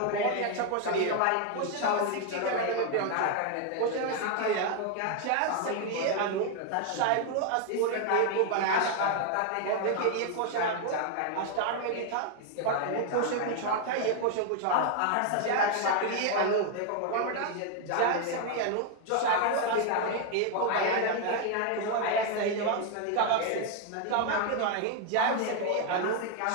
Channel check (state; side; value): different; both; correlation 0.00